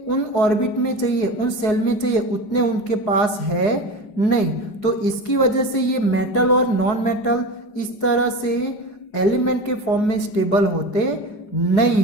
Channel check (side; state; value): right; late; 4.8 ms